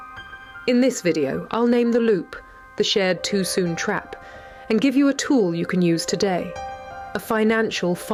In this video, I'll name the loop, the shared too soon trap, and give you a tool you can use today, a financial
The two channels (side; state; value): both; identical; correlation 1.00